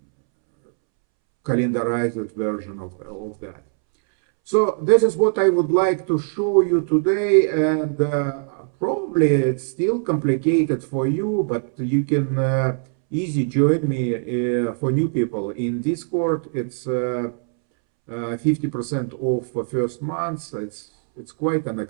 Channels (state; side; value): silent; left; 64 dB below the other